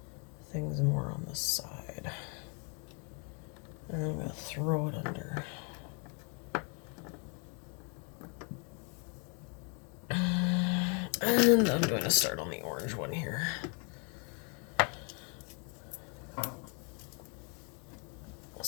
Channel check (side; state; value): right; quieter; 35.3 dB